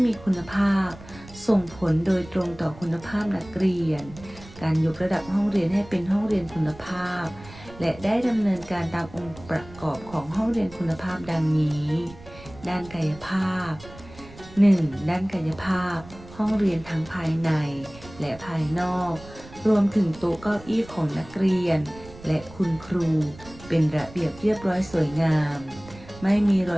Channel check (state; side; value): noise; right; rumble, 19 dB below the sound